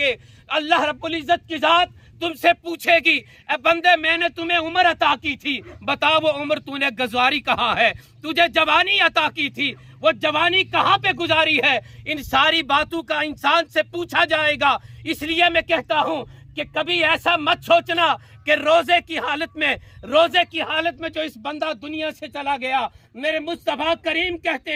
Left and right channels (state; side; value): identical; both; correlation 1.00